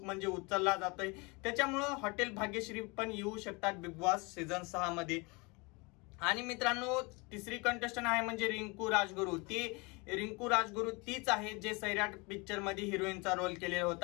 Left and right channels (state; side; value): quieter; right; 27.9 dB